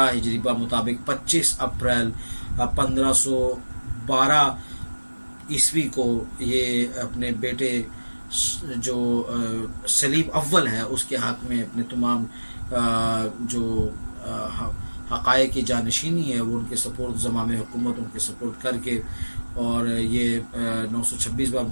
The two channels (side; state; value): both; inverted; correlation -1.00